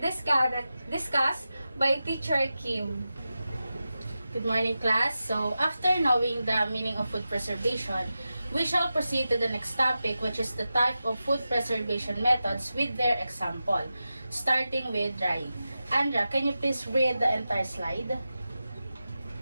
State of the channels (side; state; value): both; inverted; correlation -0.92